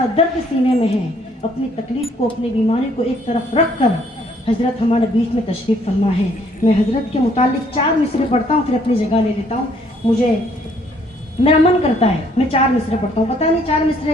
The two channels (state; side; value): normal; both; correlation 0.64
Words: दर्द सीने में है, अपनी तकलीफ़ को, अपनी बीमारी को एक तरफ रख कर हज़रत हमारे बीच में तशरीफ़ फरमा है। मैं हज़रत के मुतालिक 4 मिसरे पढ़ता हूँ, फिर अपनी जगह ले लेता हूँ। मुझे मेरा मन करता है मैं 4 मिसरे पढ़ता हूँ, पता नहीं 4